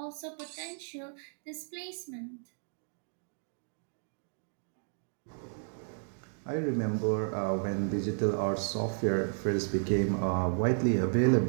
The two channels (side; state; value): left; silent; digital silence